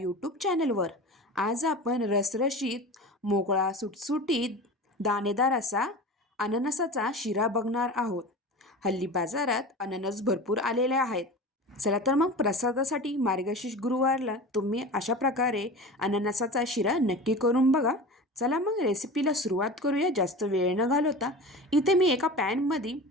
चॅनलवर। आज आपण रसरशीत, मोकळा, सुटसुटीत, दाणेदार असा अननसाचा शिरा बघणार आहोत। हल्ली बाजारात अननस भरपूर आलेले आहेत। चला तर मग प्रसादासाठी मार्गशीर्ष गुरुवारला तुम्ही अशा प्रकारे अननसाचा शिरा नक्की करून बघा। चला मग रेसिपीला सुरुवात करूया जास्त वेळ न घालवता। इथे मी एका पॅनमध्ये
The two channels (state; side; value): normal; both; correlation 0.33